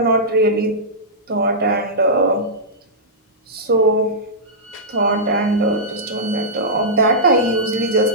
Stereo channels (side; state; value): both; normal; correlation -0.13